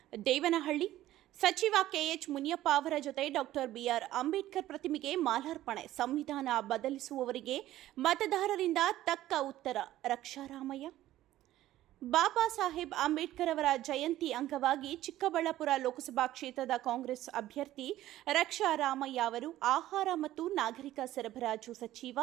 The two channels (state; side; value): quieter; left; 14.3 dB